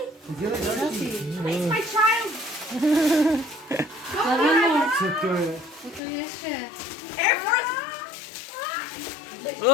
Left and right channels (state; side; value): drops out; right; at 6.0 s